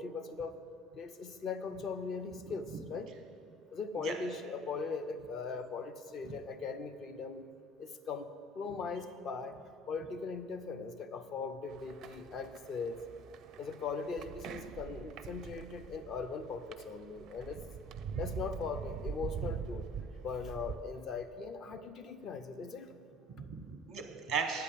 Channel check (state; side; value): normal; both; correlation 0.50